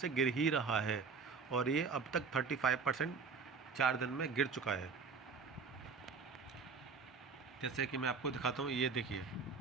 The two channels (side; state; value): left; quieter; 5.2 dB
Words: गिर ही रहा है, और ये अब तक 35% 4 दिन में गिर चुका है। जैसे कि मैं आपको दिखाता हूँ, ये देखिए,